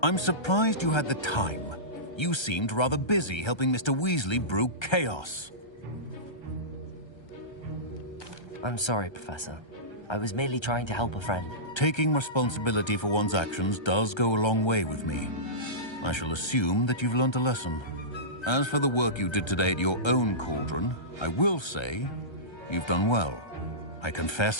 I'm surprised you had the time. You seemed rather busy helping Mr. Weasley brew chaos. I'm sorry, Professor. I was merely trying to help a friend. Taking responsibility for one's actions does go a long way with me. I shall assume that you've learnt a lesson. As for the work you did today at your own cauldron, I will say you've done well. I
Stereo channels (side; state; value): right; late; 1.3 ms